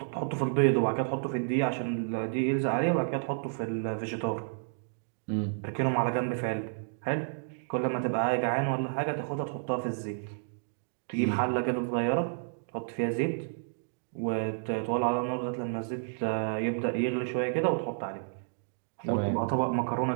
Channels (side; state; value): left; silent; digital silence